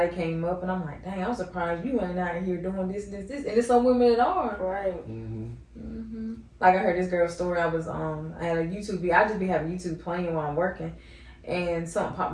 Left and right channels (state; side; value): identical; both; correlation 1.00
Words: came up, and I'm like, dang, I'm surprised you ain't out here doing this, and it's some women that are. Right. Like I heard this girl's story. I had a YouTube video. I just be having YouTube playing while I'm working. And something